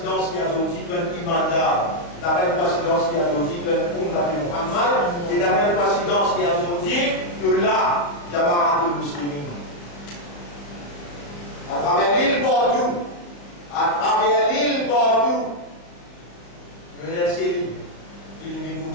qui a dit qu'un imandar, la même coïncidence qui a dit qu'un Muhammad, et la même coïncidence qui a dit que là, Jamaat al-Muslimin. À travers l'île partout, le LCI, qui est comme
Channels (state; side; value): late; right; 35 ms